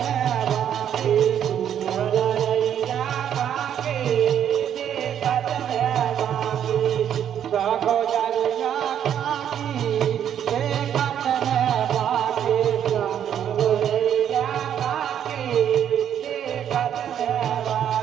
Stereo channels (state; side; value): quieter; left; 9.5 dB